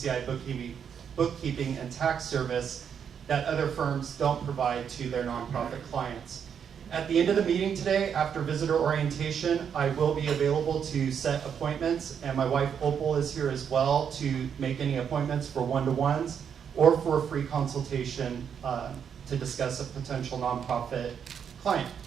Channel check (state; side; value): quieter; left; 7.7 dB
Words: Bookkeeping and Tax Service that other firms don't provide to their nonprofit clients. At the end of the meeting today, after visitor orientation, I will be available to set appointments, and my wife Opal is here as well to make any appointments for one-to-ones or for a free consultation to discuss a potential nonprofit client.